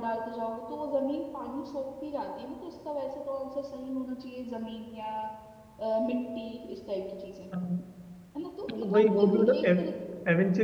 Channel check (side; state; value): both; identical; correlation 1.00